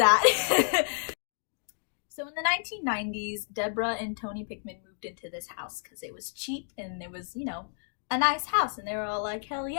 So in the 1990s, Deborah and Tony Pickman moved into this house because it was cheap and it was, you know, a nice house, and they were all like, hell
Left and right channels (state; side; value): silent; right; digital silence